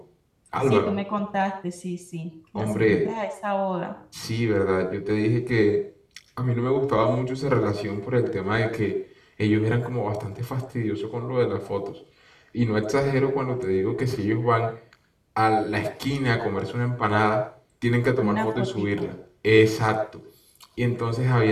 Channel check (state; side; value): identical; both; correlation 1.00